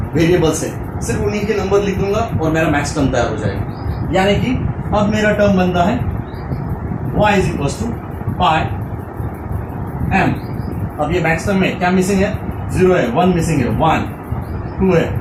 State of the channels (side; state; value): both; identical; correlation 1.00